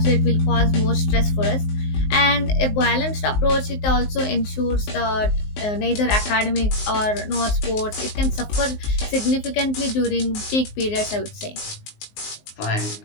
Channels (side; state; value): right; late; 19 ms